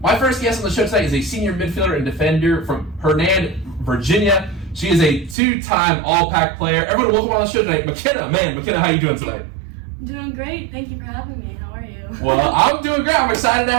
My first guest on the show tonight is a senior midfielder and defender from Hernan, Virginia. She is a 2-time All-Pac player. Everyone, welcome on the show tonight, Makenna. Makenna, how are you doing tonight? I'm doing great. Thank you for having me. How are you? Well, I'm doing great. I'm excited to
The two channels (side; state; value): left; drops out; at 5.4 s